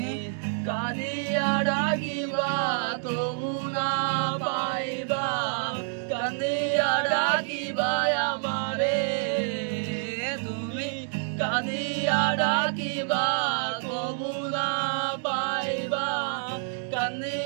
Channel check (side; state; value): left; silent; digital silence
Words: কাঁদিয়া ডাকিবা তবু না পাইবা কাঁদিয়া ডাকিবা আমারে তুমি কাঁদিয়া ডাকিবা তবু না পাইবা